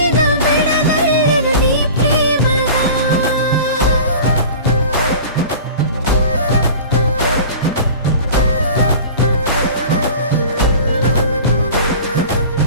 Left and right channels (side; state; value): both; inverted; correlation -0.39